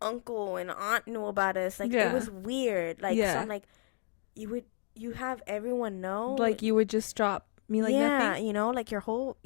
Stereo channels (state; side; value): silent; right; 56 dB below the other